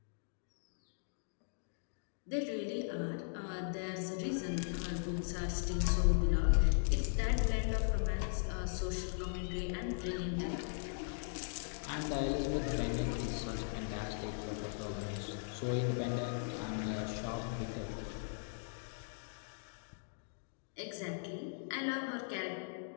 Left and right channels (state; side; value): silent; right; digital silence